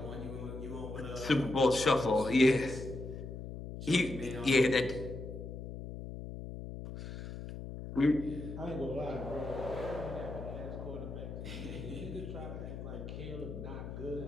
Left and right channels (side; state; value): left; noise; hum, 8 dB below the sound